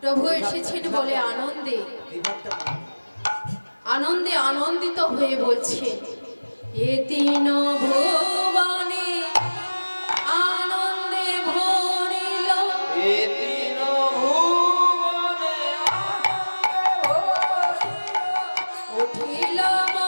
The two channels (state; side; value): inverted; both; correlation -1.00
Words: প্রভু এসেছেন বলে আনন্দে আনন্দে আনন্দিত হয়ে বলছেন, এ তিন ভুবনে আনন্দে ভরিল, এ তিন ভুবনে আনন্দে ভরিল, উঠিল